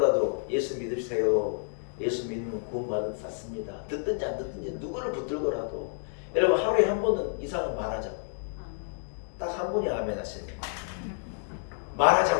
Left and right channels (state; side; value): silent; right; digital silence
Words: 예수 믿으세요. 예수 믿으면 구원받은 샀습니다. 듣든지 안 듣든지 누구를 붙들고라도 여러분 하루에 한 번은 이상은 말하자고요. 딱 한 분이 아멘 하시네요.